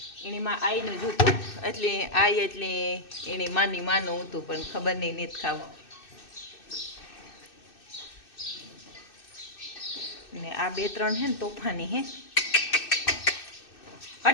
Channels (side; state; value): right; late; 2.6 ms